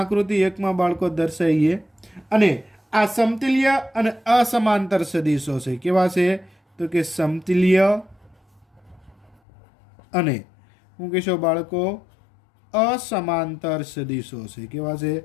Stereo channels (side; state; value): right; drops out; at 9.3 s